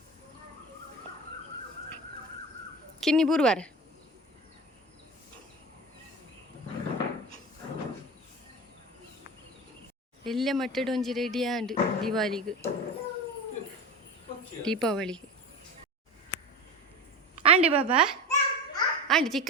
ಕಿನ್ನಿ ಬುರುವಾರ ಎಲ್ಲ ಮಟ್ಟಡ ಒಂಜಿ ರೆಡಿ ಆಂಡ್ ದೀಪಾವಳಿಗೆ ಆಂಡೆ ಬಾಬಾ ಆಂಡೆ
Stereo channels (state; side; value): normal; both; correlation 0.29